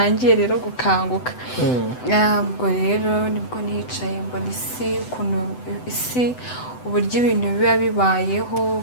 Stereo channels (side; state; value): right; late; 7.9 ms